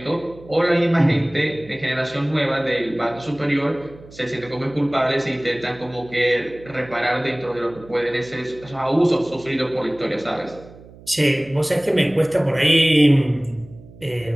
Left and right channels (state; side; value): noise; right; hum, 21 dB below the sound